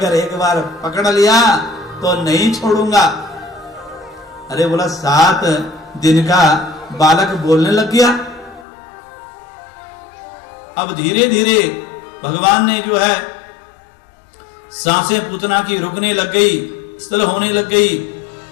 एक बार पकड़ लिया तो नहीं छोड़ूंगा। अरे बोला 7 दिन का बालक बोलने लग गया। अब धीरे धीरे भगवान ने जो है सांसें पूतना की रुकने लग गई, स्थल होने लग गई,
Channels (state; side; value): drops out; right; at 8.7 s